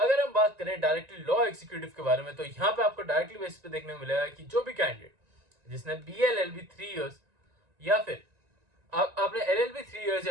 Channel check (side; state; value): left; late; 1.9 ms